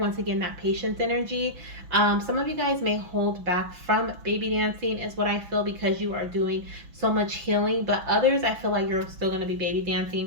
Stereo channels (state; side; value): late; left; 6.1 ms